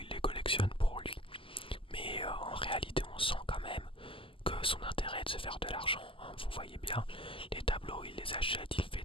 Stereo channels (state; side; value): late; right; 0.25 ms